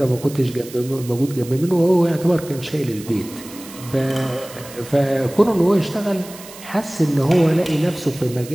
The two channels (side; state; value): right; noise; hiss, 17 dB below the sound